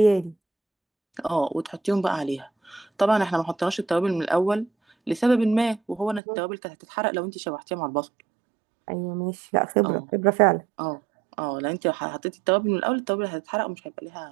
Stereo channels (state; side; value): drops out; left; at 6.2 s